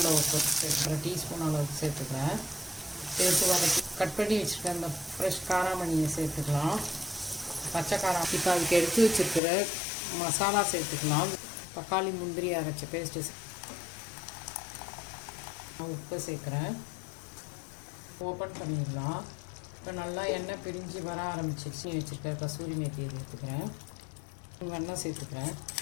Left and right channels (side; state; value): right; drops out; at 9.4 s